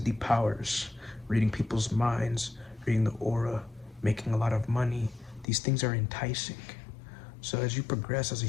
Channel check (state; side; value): drops out; right; at 5.5 s